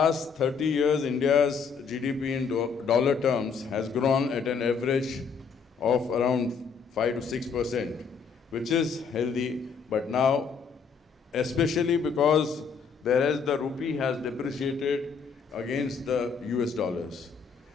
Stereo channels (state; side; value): quieter; right; 5.8 dB